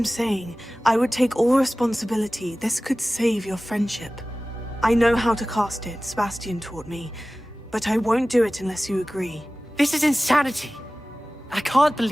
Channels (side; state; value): both; normal; correlation 0.97